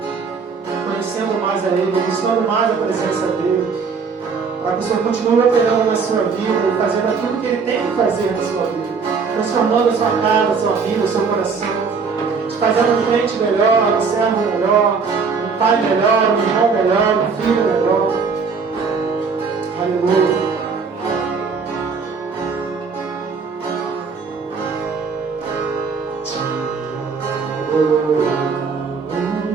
conhecendo mais a Ele, buscando mais a presença dEle, para que o Senhor continue operando na sua vida, fazendo aquilo que Ele tem que fazer na sua vida, transformando a sua casa, a sua vida, o seu coração, te fazendo um crente melhor, um servo melhor, um pai melhor, um irmão melhor, um filho melhor. Aleluia.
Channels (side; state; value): left; quieter; 5.2 dB